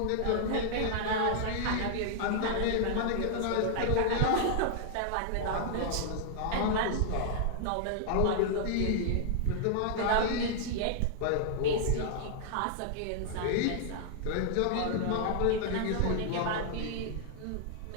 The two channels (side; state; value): both; different; correlation -0.01